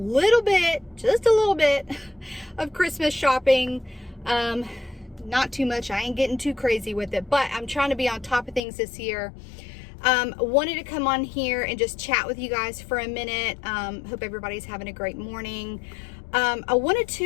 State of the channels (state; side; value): drops out; right; at 8.6 s